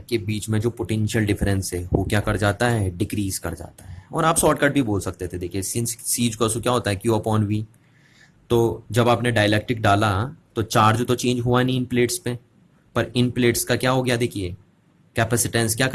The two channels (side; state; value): both; identical; correlation 1.00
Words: के बीच में जो पोटेंशियल डिफरेंस है वो क्या कर जाता है, डिक्रीज कर जाता है। और आप शॉर्टकट भी बोल सकते थे, देखिए सिंस सी क्या होता है, क्यू अपॉन वी। तो जब आपने डाइलेक्ट्रिक डाला तो चार्ज तो चेंज हुआ नहीं इन प्लेट्स पे, पर इन प्लेट्स का क्या हो गया, देखिए कैपेसिटेंस क्या